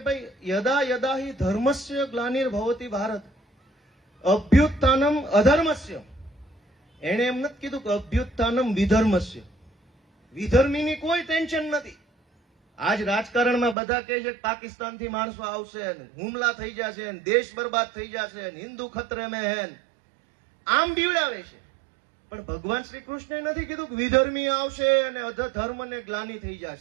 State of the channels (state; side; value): drops out; left; at 13.8 s